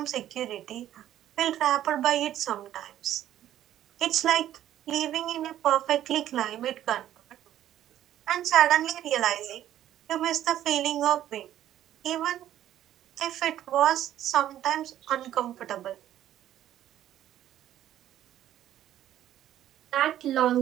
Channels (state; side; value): quieter; left; 12.1 dB